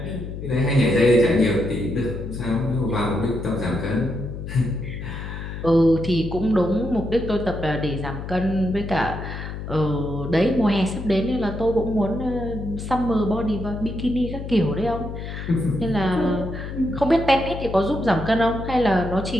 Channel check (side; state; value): left; noise; hum, 8 dB below the sound